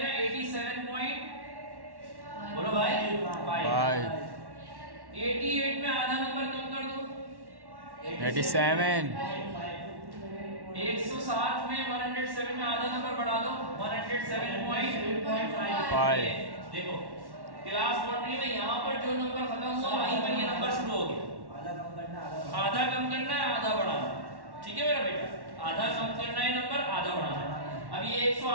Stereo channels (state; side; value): late; left; 1.1 ms